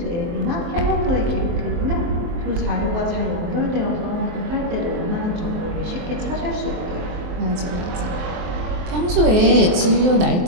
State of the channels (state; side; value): late; left; 23 ms